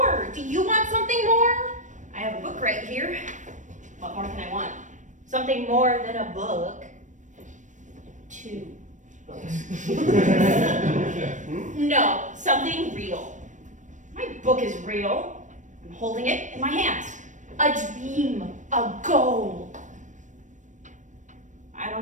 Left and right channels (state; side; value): late; left; 0.36 ms